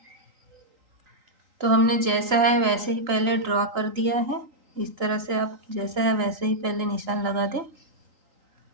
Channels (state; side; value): late; left; 3.9 ms